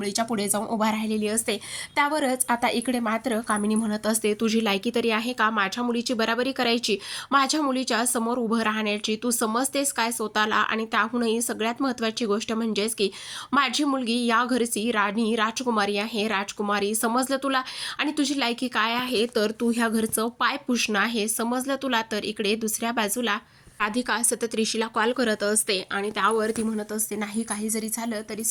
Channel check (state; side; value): identical; both; correlation 1.00